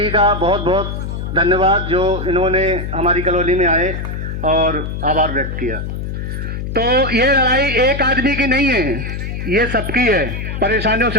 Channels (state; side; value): noise; left; hum, 5 dB below the sound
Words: का बहुत बहुत धन्यवाद जो इन्होंने हमारी कॉलोनी में आए और आभार व्यक्त किया। तो ये लड़ाई एक आदमी की नहीं है, ये सबकी है, परेशानियों